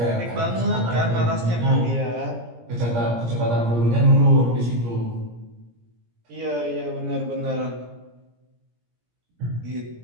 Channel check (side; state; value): left; late; 17 ms